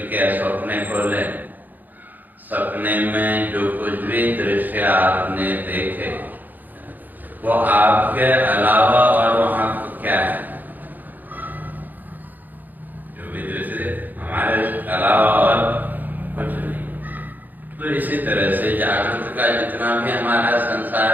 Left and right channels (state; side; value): late; left; 0.085 ms